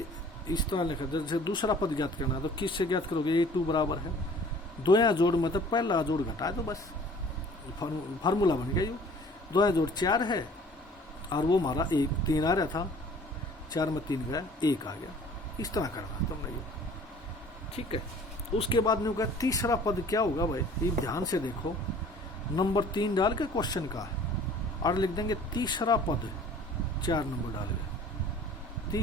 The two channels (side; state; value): both; normal; correlation 0.50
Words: इस तरह लिखा, जैसे दूसरा पद ज्ञात करना है तो किससे ज्ञात करोगे, A2 बराबर है 2 जोड़ मत पहला जोड़ घटा दो बस, फार्मूला बन गया। यो 2 जोड़ 4 है और वो हमारा 1 3 आ रहा था, 4 में 3 गया 1 आ गया, इस तरह करना तुमने ये, ठीक है। उसके बाद में होगा तीसरा पद क्या होगा भाई, ये ध्यान से देखो, नंबर 3 डाल के क्वेश्चन का और लिख देंगे तीसरा पद, 4 नंबर डाल के,